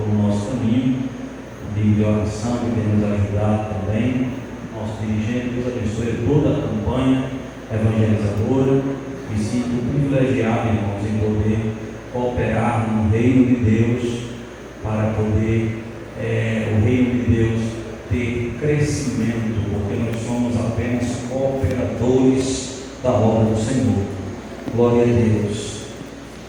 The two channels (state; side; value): identical; both; correlation 1.00